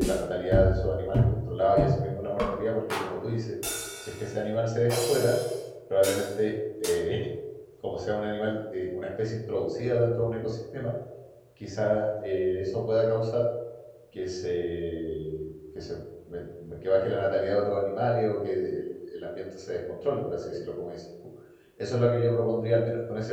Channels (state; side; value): identical; both; correlation 1.00